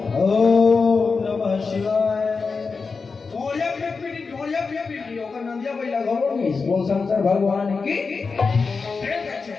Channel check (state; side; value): quieter; right; 4.7 dB